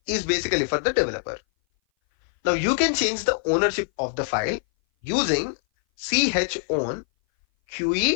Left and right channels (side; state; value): right; silent; 59 dB below the other